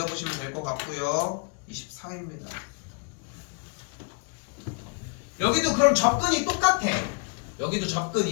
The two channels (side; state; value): right; quieter; 39.5 dB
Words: 될 것 같고요. 24입니다. 여기도 그럼 접근이 똑같아. 여기도